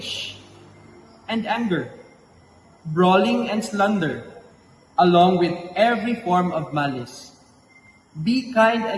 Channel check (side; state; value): both; identical; correlation 1.00